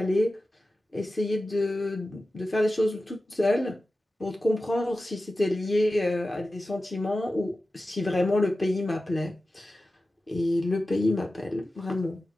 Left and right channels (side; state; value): both; normal; correlation 0.94